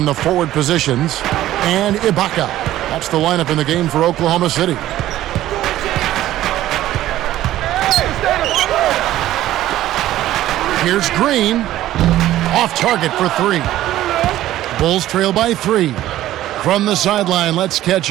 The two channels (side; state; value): left; quieter; 14.0 dB